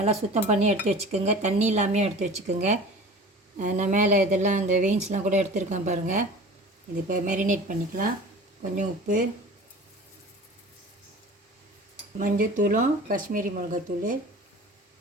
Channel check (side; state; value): both; normal; correlation 0.40